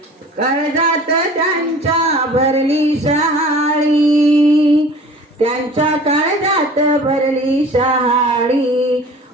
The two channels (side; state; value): both; normal; correlation 0.45